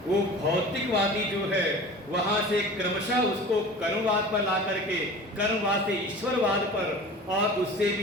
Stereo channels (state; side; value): normal; both; correlation 0.39